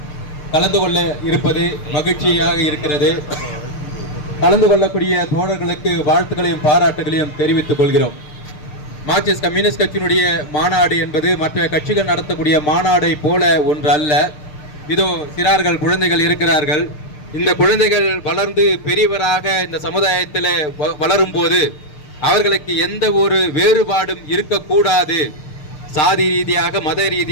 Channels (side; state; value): right; late; 6.6 ms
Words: கலந்து கொள்ள இருப்பது மகிழ்ச்சியாக இருக்கிறது. கலந்து கொள்ளக்கூடிய தோழர்களுக்கு வாழ்த்துக்களையும் பாராட்டுகளையும் தெரிவித்துக் கொள்கிறோம். மார்க்சிஸ்ட் கம்யூனிஸ்ட் கட்சியினுடைய மாநாடு என்பது மற்ற கட்சிகள் நடத்தக்கூடிய மாநாடை போல ஒன்று அல்ல. இதோ சிறார்கள் குழந்தைகள் இருக்கிறார்கள். இந்த குழந்தைகள் வளர்ந்து பெரியவராக இந்த சமுதாயத்தில் வளரும் போது அவர்களுக்கு எந்த ஒரு வேறுபாடும் இருக்கக்கூடாது. சாதி ரீதியாக, மத